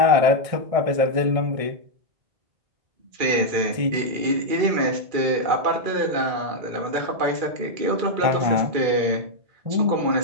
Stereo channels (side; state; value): left; late; 2.4 ms